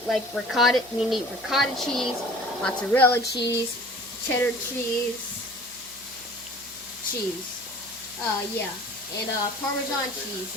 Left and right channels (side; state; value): right; noise; hum, 25 dB below the sound